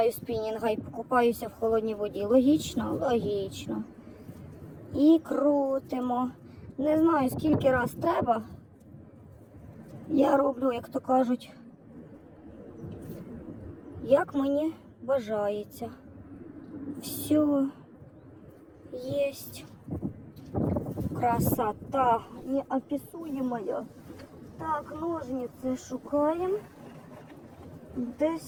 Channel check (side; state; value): both; identical; correlation 1.00